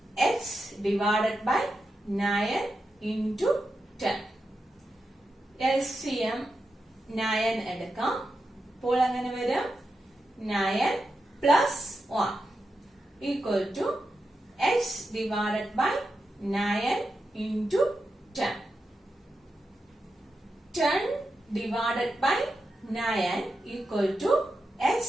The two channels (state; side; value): normal; both; correlation 0.88